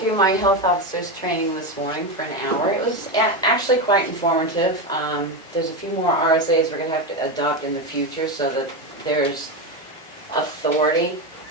my health officer's training this morning for an hour. It was actually quite informative. There's a few more RSAs we're gonna have to adopt in the future so that there's authority.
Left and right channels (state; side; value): normal; both; correlation 0.14